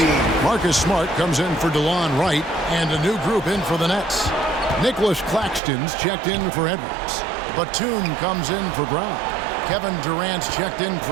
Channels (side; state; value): left; drops out; at 5.6 s